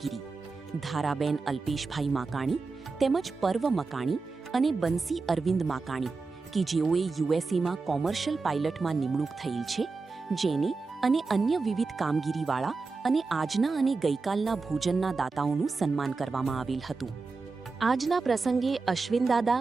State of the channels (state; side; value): quieter; left; 4.1 dB